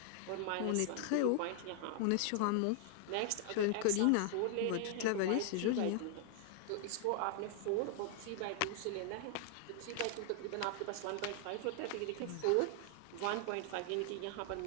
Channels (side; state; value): both; different; correlation 0.00